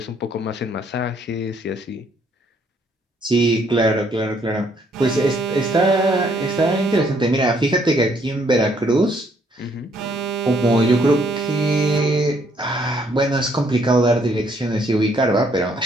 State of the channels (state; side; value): normal; both; correlation 0.68